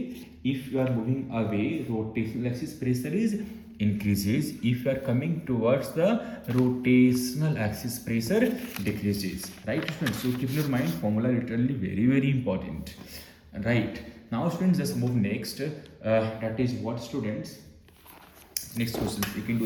If you are moving away, rotational axis pressure is increases. If you are coming towards the rotational axis, pressure decreases. Right, students? So keep in your mind, formula literally very, very important. Right. Now, students, just move next. That is what, students? Next question. You can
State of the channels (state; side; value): identical; both; correlation 1.00